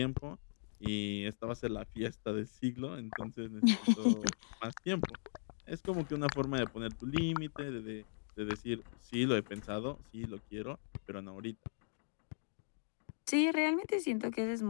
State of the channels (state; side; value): silent; right; digital silence